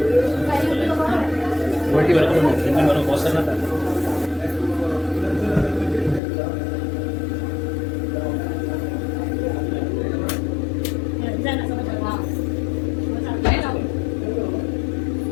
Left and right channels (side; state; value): right; drops out; at 6.2 s